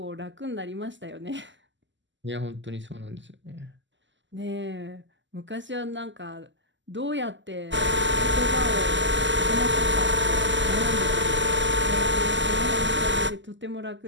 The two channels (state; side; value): late; left; 0.54 ms